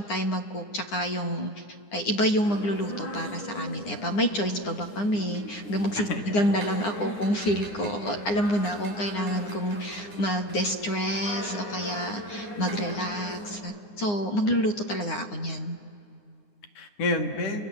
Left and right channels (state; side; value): late; right; 9.8 ms